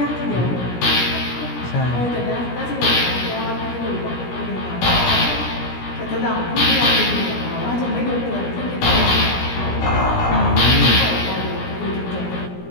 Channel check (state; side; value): late; right; 17 ms